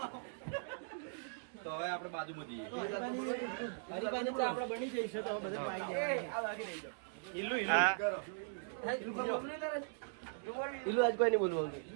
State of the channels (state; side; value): silent; left; digital silence